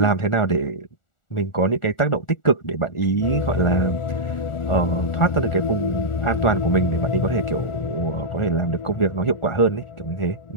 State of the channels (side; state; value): right; late; 1.4 ms